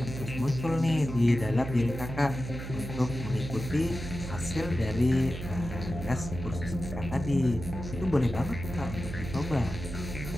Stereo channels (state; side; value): noise; right; hum, 8 dB below the sound